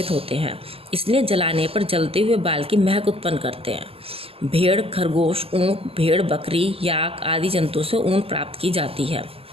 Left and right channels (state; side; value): late; left; 0.28 ms